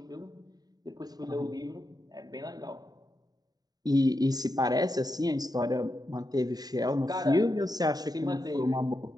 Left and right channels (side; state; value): left; late; 0.19 ms